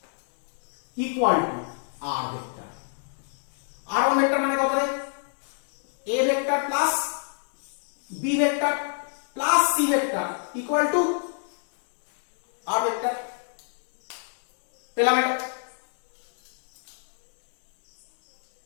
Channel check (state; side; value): silent; right; digital silence